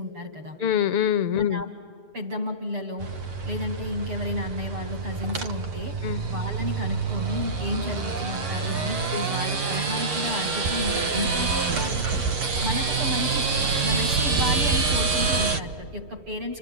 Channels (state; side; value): late; left; 6.8 ms